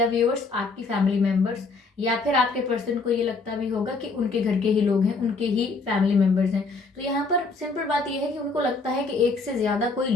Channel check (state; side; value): quieter; right; 3.9 dB